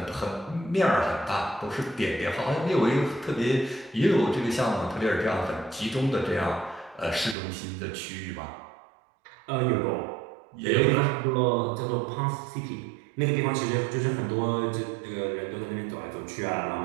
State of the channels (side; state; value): left; drops out; at 7.4 s